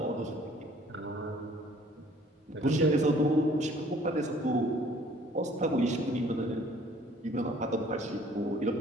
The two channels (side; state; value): both; normal; correlation 0.56